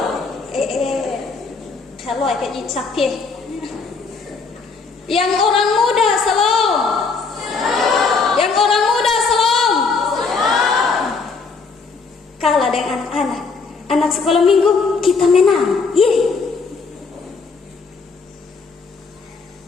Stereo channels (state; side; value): quieter; right; 4.6 dB